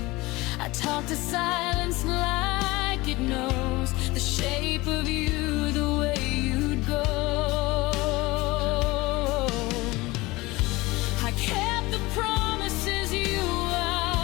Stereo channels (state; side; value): quieter; right; 21.4 dB